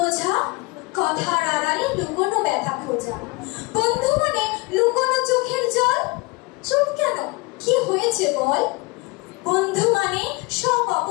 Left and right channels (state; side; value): quieter; right; 25.1 dB